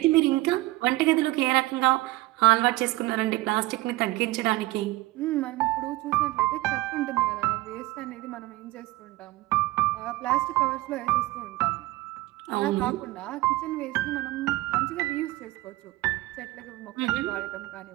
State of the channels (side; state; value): left; quieter; 18.9 dB